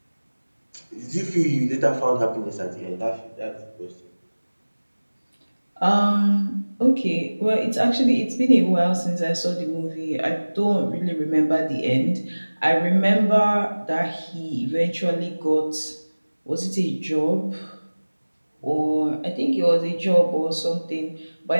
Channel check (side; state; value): both; inverted; correlation -1.00